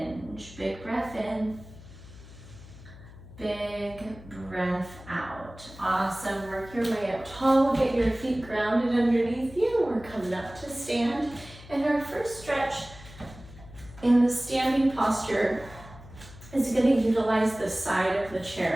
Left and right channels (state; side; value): noise; left; hum, 18 dB below the sound